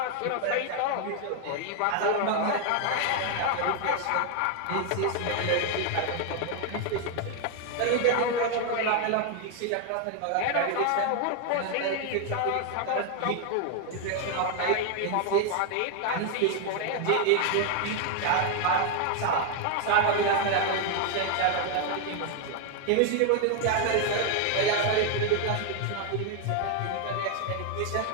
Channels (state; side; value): different; both; correlation 0.00